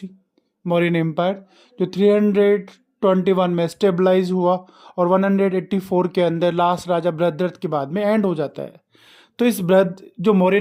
Mauryan empire, जो 321 में स्टेबलाइज हुआ और 184 के अंदर लास्ट राजा बृहद्रथ के बाद में एंड हो जाता है। तो इस बृहद जो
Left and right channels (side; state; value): both; identical; correlation 1.00